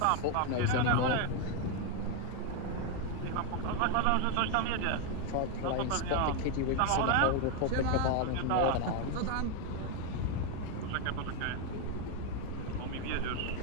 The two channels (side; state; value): both; different; correlation 0.02